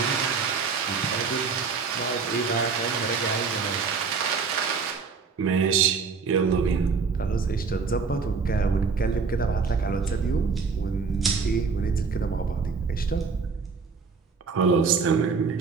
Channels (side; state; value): left; quieter; 5.1 dB